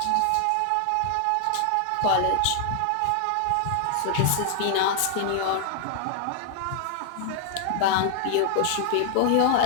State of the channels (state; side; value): different; both; correlation 0.00